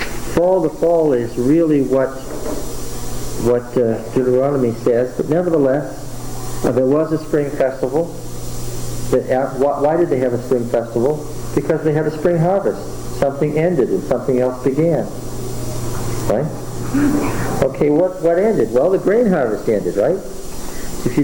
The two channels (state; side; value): identical; both; correlation 1.00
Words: The fall is really what what Deuteronomy says, but nevertheless, there was a spring festival. Why did they have a spring festival? Because they had a spring harvest. Something ended and something else began. Right? Okay, what ended? Well, the grain harvest ended, right? If you